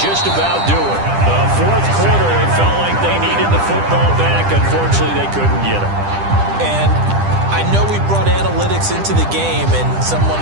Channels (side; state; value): left; late; 10 ms